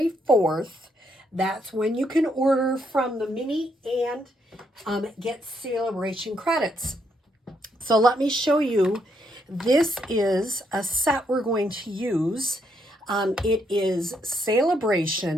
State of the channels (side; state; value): both; normal; correlation 0.75